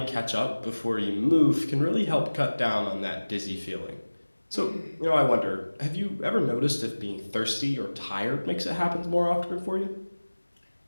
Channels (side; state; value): both; inverted; correlation -1.00